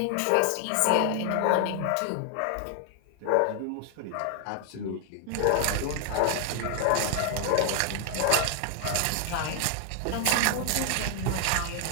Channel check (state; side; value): different; both; correlation 0.00